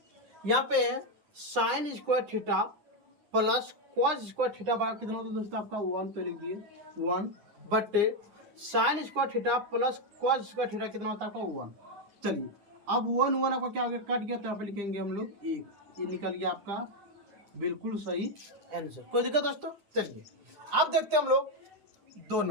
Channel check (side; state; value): left; late; 9.8 ms